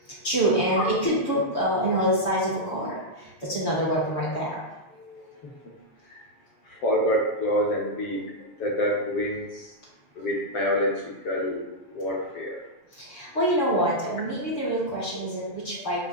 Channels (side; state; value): right; late; 6.8 ms